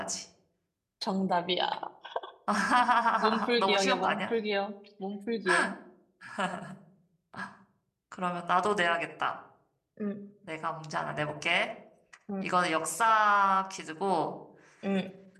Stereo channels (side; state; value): both; identical; correlation 1.00